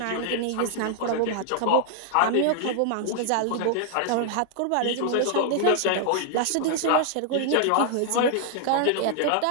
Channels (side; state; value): both; different; correlation 0.00